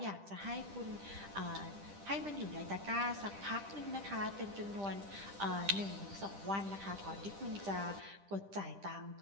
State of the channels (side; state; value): left; late; 10 ms